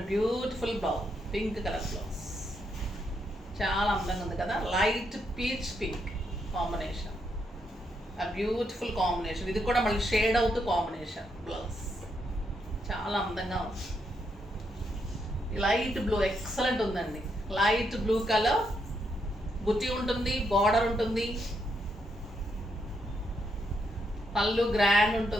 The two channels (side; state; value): both; normal; correlation 0.79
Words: beautiful blouse, pink colour blouse. చాలా అందంగా ఉంది కదా, లైట్ పీచ్ పింక్ కాంబినేషన్, ఆ బ్యూటిఫుల్ కాంబినేషన్. ఇది కూడా మళ్ళీ షేడ్ అవుతూ కాంబినేషన్ బ్లౌజ్, చాలా అందంగా ఉంది. లైట్ బ్లూ ఎక్సలెంట్ ఉందండి, లైట్ బ్లూ కలర్, బుట్టి ఉంటుంది, బార్డర్ ఉంటుంది, పళ్ళు గ్రాండ్